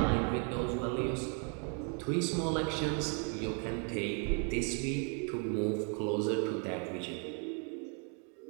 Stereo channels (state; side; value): quieter; left; 39.2 dB